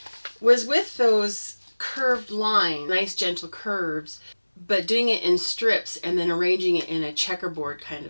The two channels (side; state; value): both; inverted; correlation -1.00